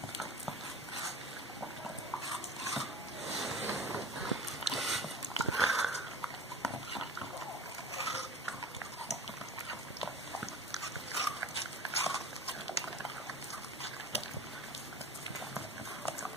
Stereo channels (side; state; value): both; normal; correlation 0.37